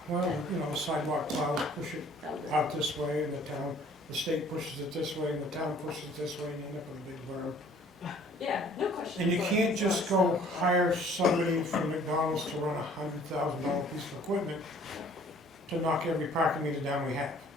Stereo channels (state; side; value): normal; both; correlation 0.55